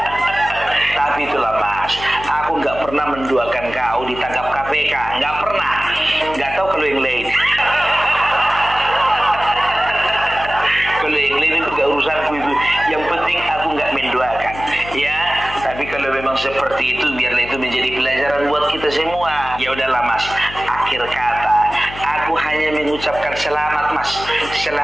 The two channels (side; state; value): left; noise; hum, 13 dB below the sound